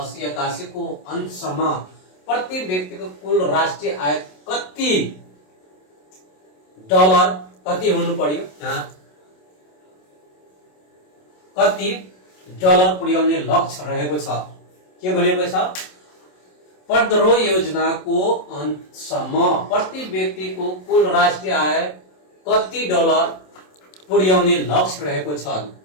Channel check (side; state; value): right; late; 27 ms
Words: 81 को अन्तसम्म प्रति व्यक्तिको कुल राष्ट्रिय आय कति डलर कति हुनु पर्यो? यहाँ कति डलर पुर्याउने लक्ष्य रहेको छ? के भनेको छ? 15औं योजनाको अन्तसम्म प्रति व्यक्तिको कुल राष्ट्रिय आय कति डलर पुर्याउने लक्ष्य रहेको छ